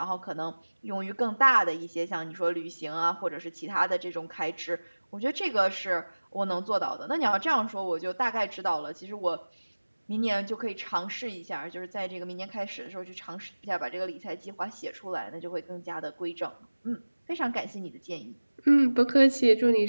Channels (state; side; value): inverted; both; correlation -1.00